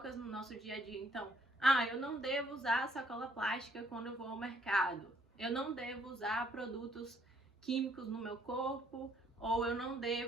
no nosso dia a dia. Então, eu não devo usar sacola plástica quando eu vou ao mercado. Eu não devo usar produtos químicos no meu corpo, ou eu não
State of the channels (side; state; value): both; normal; correlation 0.66